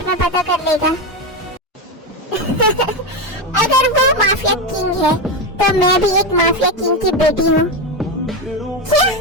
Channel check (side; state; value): both; normal; correlation 0.13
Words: में पता कर लेगा। अगर वो माफिया किंग है तो मैं भी एक माफिया किंग की बेटी हूँ। क्या?